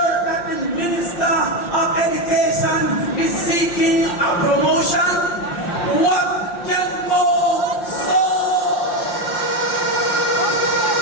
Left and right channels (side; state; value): right; late; 5.7 ms